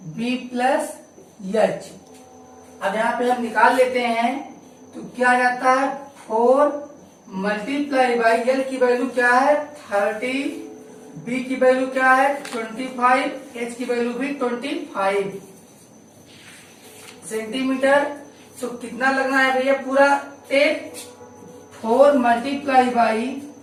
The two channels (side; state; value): both; identical; correlation 1.00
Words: B plus H। अब यहाँ पे हम निकाल लेते हैं तो क्या आ जाता है 4 मल्टीप्लाई बाई L की वैल्यू क्या है 30, B की वैल्यू क्या है 25, H की वैल्यू भी 25 सेंटीमीटर। तो कितना लगना है भैया पूरा टेप 4 मल्टीप्लाई बाई